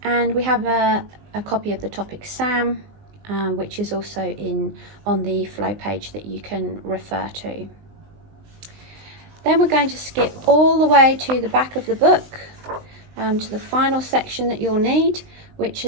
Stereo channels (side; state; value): left; late; 19 ms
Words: And we have a copy of the topic SAM, which is also on the flow page that you can refer to. Then we're going to skip all the way to the back of the book, to the final section that you'll need, which